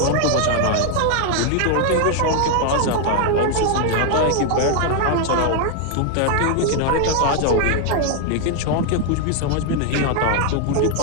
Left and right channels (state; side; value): different; both; correlation 0.00